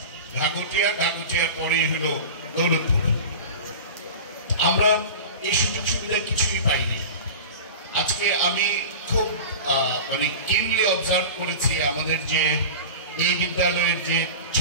ঘাগুটিয়ার পরেই হলো দৌলতপুর। আমরা এই সুযোগ সুবিধা কিছুই পাইনি। আজকে আমি খুব মানে কিনলি অবজার্ভ করেছি আমাদের যে এই বিদ্যালয়ের যে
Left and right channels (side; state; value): both; inverted; correlation -0.32